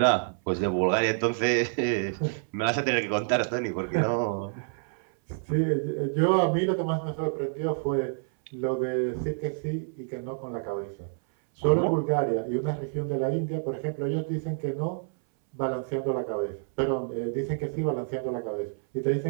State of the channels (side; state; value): left; silent; 59 dB below the other